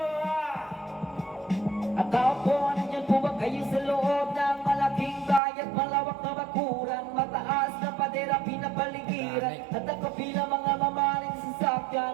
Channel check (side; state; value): left; drops out; at 5.4 s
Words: At tao po, nandyan po ba kayo sa loob ng malaking bayan, malawak na bakuran, mataas na padera, pinapaligiran, at nakapila mga mamaling sasakyan,